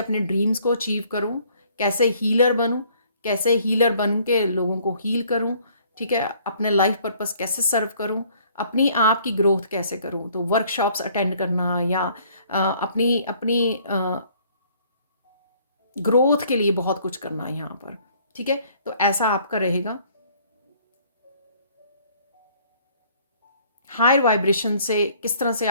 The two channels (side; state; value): both; inverted; correlation -0.60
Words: ड्रीम्स को अचीव करूं, कैसे हीलर बनूं, कैसे हीलर बन के लोगों को हील करूं, ठीक है, अपने लाइफ पर्पस कैसे सर्व करूं, अपनी आप की ग्रोथ कैसे करूं। तो वर्कशॉप्स अटेंड करना, या अपनी अपनी ग्रोथ के लिए बहुत कुछ करना है यहाँ पर, ठीक है। तो ऐसा आपका रहेगा। हायर वाइब्रेशन से किस तरह से